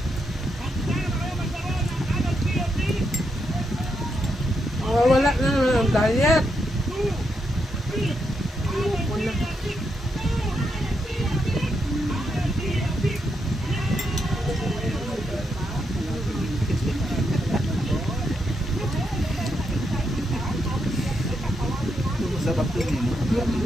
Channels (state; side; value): normal; both; correlation 0.81